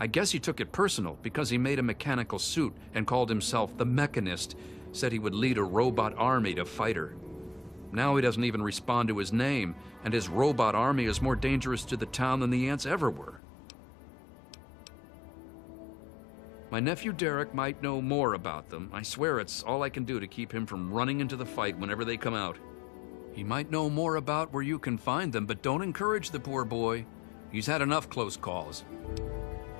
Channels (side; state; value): right; drops out; at 13.4 s